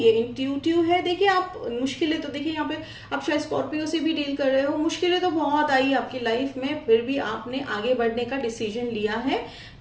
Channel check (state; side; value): identical; both; correlation 1.00